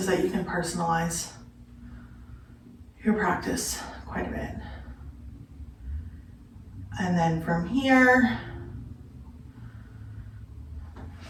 that you can personalize your practice quite a bit. And then from here,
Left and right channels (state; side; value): identical; both; correlation 1.00